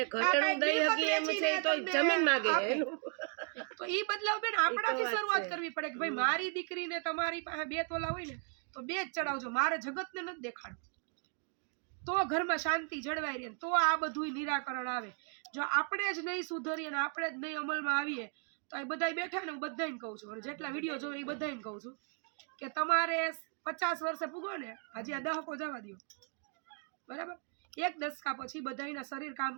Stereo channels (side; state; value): left; quieter; 39.7 dB